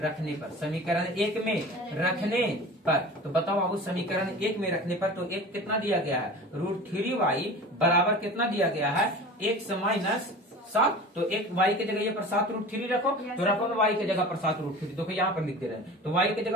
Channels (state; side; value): normal; both; correlation 0.37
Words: पर, समीकरण 1 में रखने पर। तो बताओ बाबू समीकरण 1 में रखने पर तो एक कितना दिया गया है? √3y बराबर कितना दिया गया है? 1 से -7। तो एक y के जगह पर 7√3 रखो, तो रखो ना y के जगह पर 7√3। देखो यहाँ पर लिख दे रहे हैं। तो y के